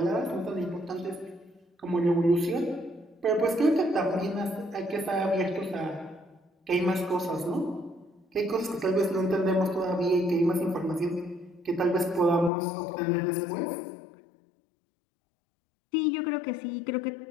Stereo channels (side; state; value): right; drops out; at 12.5 s